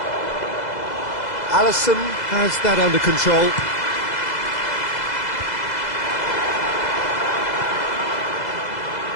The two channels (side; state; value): right; late; 2.0 ms